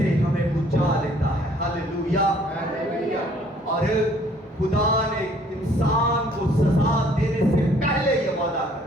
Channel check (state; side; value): normal; both; correlation 0.60